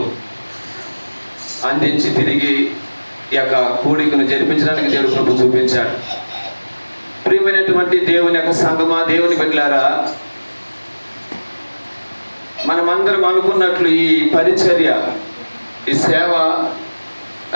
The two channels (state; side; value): inverted; both; correlation -1.00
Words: అందించి తిరిగి ఈ యొక్క కూడికను జరిపించడానికి దేవుడు కృప చూపించాడు. ప్రియమైనటువంటి దేవుని యొక్క సంఘమా, దేవుని బిడ్డలారా, మనమందరం అనుకున్నట్లు ఈ పరిచర్య, ఈ సేవ